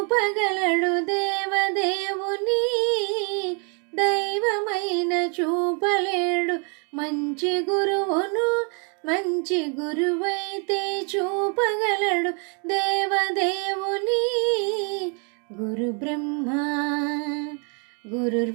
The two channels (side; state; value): left; quieter; 37.8 dB